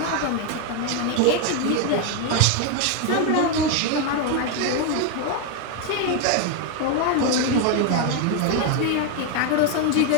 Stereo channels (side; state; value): both; different; correlation 0.01